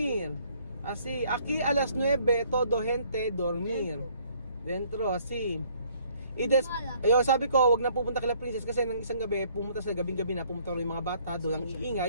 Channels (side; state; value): both; inverted; correlation -0.62